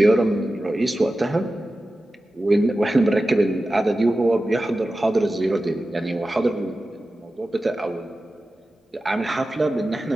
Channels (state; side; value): normal; both; correlation 0.94